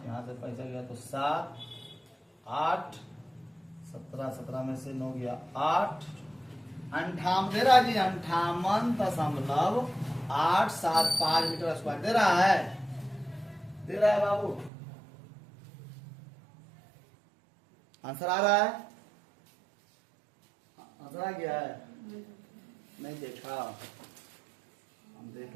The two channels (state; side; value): drops out; left; at 14.7 s